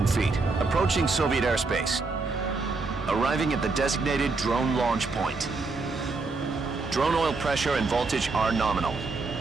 feet, approaching Soviet airspace. Arriving at the designated drone launch point. Drone oil pressure and voltage are nominal.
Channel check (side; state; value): left; quieter; 3.9 dB